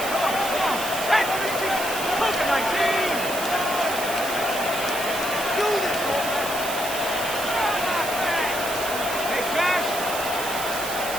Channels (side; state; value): right; noise; hiss, 6 dB below the sound